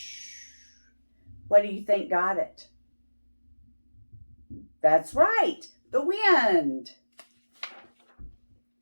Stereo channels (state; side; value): inverted; both; correlation -1.00